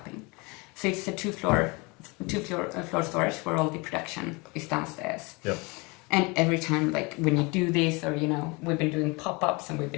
So it's a two floor storage where all the production is downstairs. Yep. And every time, like when you do this, or you know, we've been doing pop-ups and we've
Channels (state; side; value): quieter; right; 27.5 dB